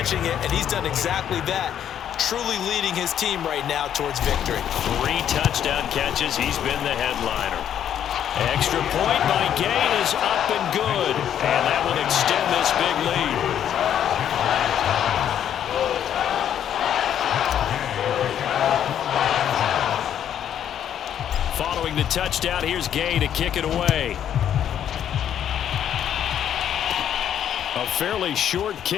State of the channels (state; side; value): quieter; right; 9.8 dB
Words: it, and he's done exactly that, truly leading his team right now towards victory. 3 touchdown catches. He's been the headliner. Extra point by Gay is up and good. And that will extend this big lead. Following the touchdown, here's Gay to kick it away. A fairly short